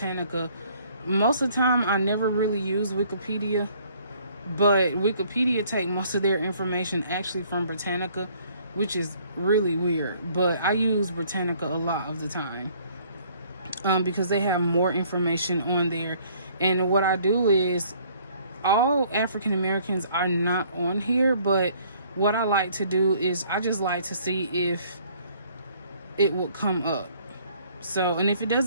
Most of the time, I never really use Wikipedia, but Wikipedia take most of their information actually from Britannica, which is really weird. But I use Britannica a lot of the time because they have more information on there. And what I do is, all African Americans are not on here, but what I like to do is I just like to see if it will come up. So, and if it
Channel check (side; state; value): both; inverted; correlation -0.60